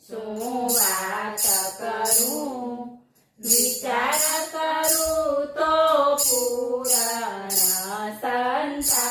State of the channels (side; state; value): both; identical; correlation 1.00